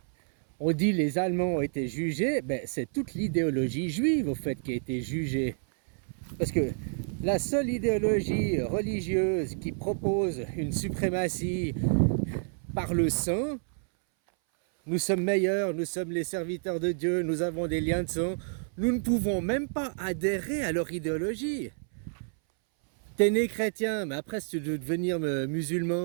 on dit les Allemands ont été jugés, ben c'est toute l'idéologie juive au fait qui a été jugée. Parce que la seule idéologie religieuse qui propose une suprématie par le sang, nous sommes meilleurs, nous sommes les serviteurs de Dieu, nous avons des liens de sang, nous ne pouvons même pas adhérer à leur idéologie. T'es né chrétien, mais après si tu veux devenir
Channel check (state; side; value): silent; left; 58 dB below the other